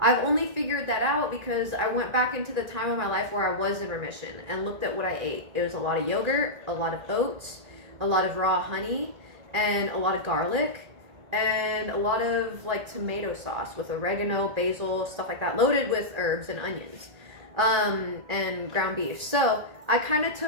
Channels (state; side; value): late; left; 1.8 ms